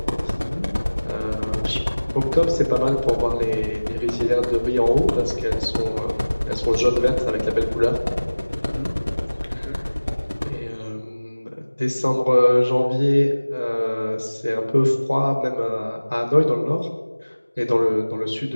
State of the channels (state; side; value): inverted; both; correlation -1.00